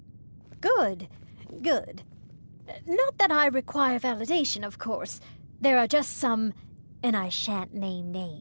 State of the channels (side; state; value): both; inverted; correlation -1.00